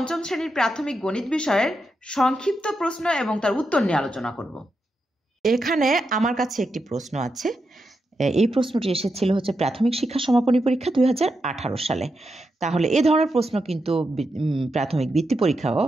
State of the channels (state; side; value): normal; both; correlation 0.86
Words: শ্রেণীর প্রাথমিক গণিত বিষয়ের সংক্ষিপ্ত প্রশ্ন এবং তার উত্তর নিয়ে আলোচনা করব। এখানে আমার কাছে একটি প্রশ্ন আছে। এই প্রশ্নটি এসেছিল প্রাথমিক শিক্ষা সমাপনী পরীক্ষা 2018 সালে। তাহলে এ ধরনের প্রশ্ন কিন্তু প্রাথমিক বৃত্তি পরীক্ষাও